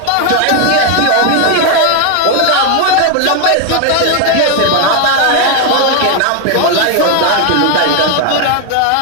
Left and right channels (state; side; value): different; both; correlation 0.01